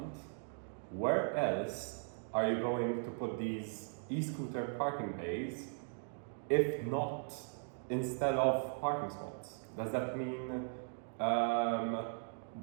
where else are you going to put these e-scooter parking bays if not instead of parking spots? Does that mean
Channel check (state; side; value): silent; left; digital silence